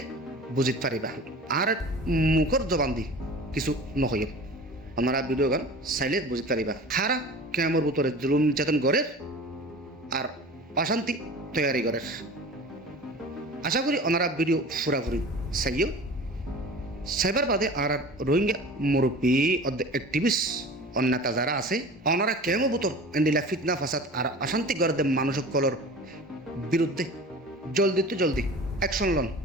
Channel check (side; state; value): both; normal; correlation 0.38